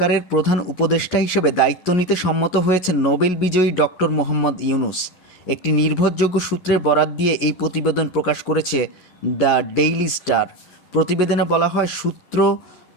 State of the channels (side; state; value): right; late; 11 ms